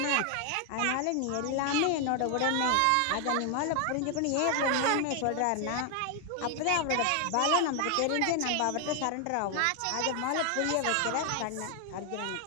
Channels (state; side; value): different; both; correlation 0.00